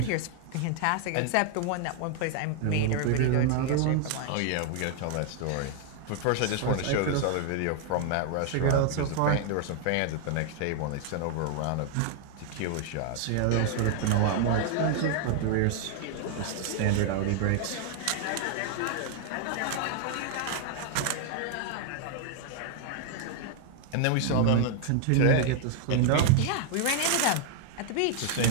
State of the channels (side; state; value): both; different; correlation 0.00